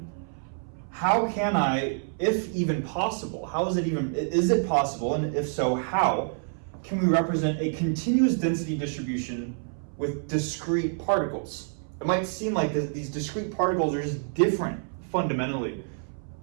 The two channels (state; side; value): silent; left; 60 dB below the other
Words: how can I, if even possible, is it possible, and if so, how can we represent a continuous density distribution with discrete particles? It might seem like these discrete particles are just different fundamentally